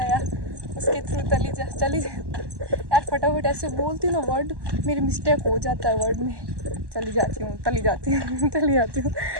उसके थ्रू चली जा। यार फटाफट ऐसे बोलती हूँ ना वर्ड, मेरी मिस्टेक हो जाता है वर्ड में। चली जाती हूँ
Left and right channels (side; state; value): left; late; 1.1 ms